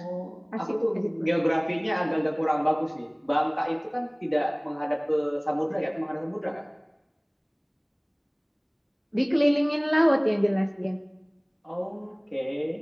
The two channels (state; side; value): identical; both; correlation 1.00